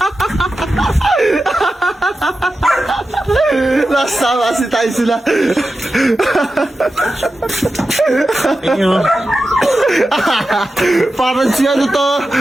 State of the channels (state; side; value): normal; both; correlation 0.92